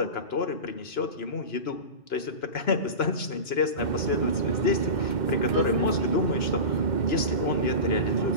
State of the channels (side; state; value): right; late; 2.9 ms